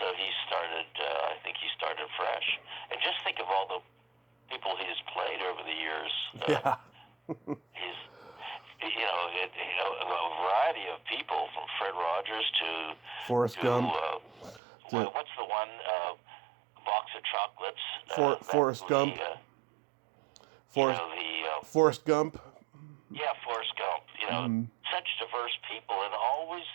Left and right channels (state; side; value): drops out; left; at 14.6 s